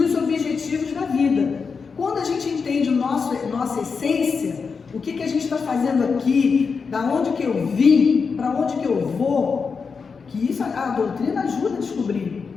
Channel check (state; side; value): quieter; right; 5.3 dB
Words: objetivos da vida. Quando a gente entende nossa essência, o que a gente está fazendo aqui, da onde que eu vim, para onde que eu vou, que isso a doutrina ajuda a descobrir.